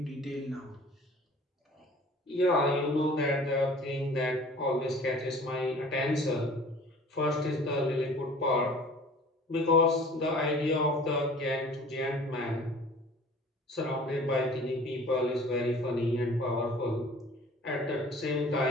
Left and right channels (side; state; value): both; normal; correlation 0.47